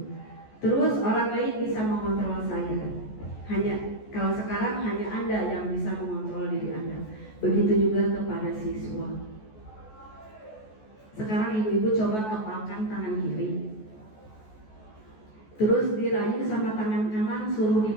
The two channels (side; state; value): right; late; 14 ms